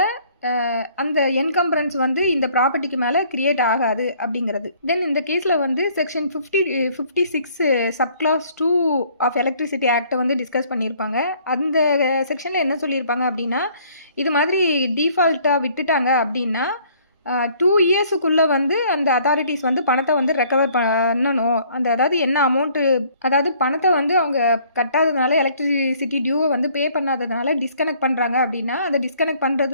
அந்த என்கம்பரன்ஸ் வந்து இந்த ப்ராப்பர்ட்டிக்கு மேலே கிரியேட் ஆகாது அப்படிங்கிறது. தென் இந்த கேஸில் வந்து செக்ஷன் 56 சப்கிளாஸ் 2 ஆஃப் எலக்ட்ரிசிட்டி ஆக்டை வந்து டிஸ்கஸ் பண்ணியிருப்பாங்க. அந்த செக்ஷனில் என்ன சொல்லியிருப்பாங்க அப்படின்னா, இது மாதிரி டிஃபால்ட்டாக விட்டுட்டாங்க அப்படின்னா 2 இயர்ஸுக்குள்ளே வந்து அந்த அத்தாரிட்டிஸ் வந்து பணத்தை வந்து ரெக்கவர் பண்ணணும். அதாவது என்ன அமௌண்ட்டு, அதாவது பணத்தை வந்து அவங்க கட்டாததுனால எலக்ட்ரிசிட்டி டியூவை வந்து பே பண்ணாததுனால டிஸ்கனெக்ட் பண்ணுறாங்க அப்படின்னா அந்த டிஸ்கனெக்ட்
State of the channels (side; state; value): both; inverted; correlation -0.59